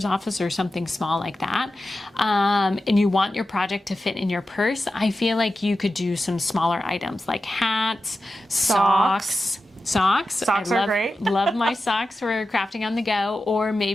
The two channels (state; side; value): normal; both; correlation 0.92